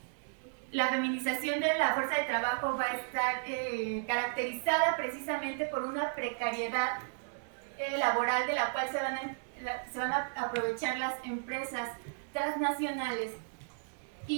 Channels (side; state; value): left; silent; digital silence